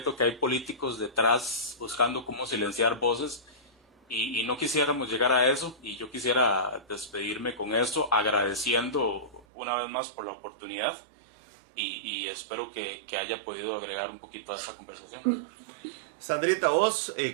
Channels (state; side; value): drops out; left; at 9.5 s